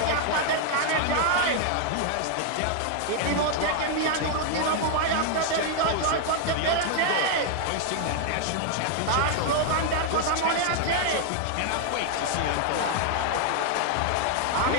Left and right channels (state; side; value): different; both; correlation 0.00